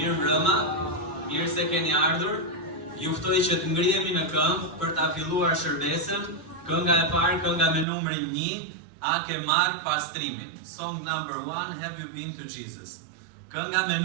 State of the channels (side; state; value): left; drops out; at 7.9 s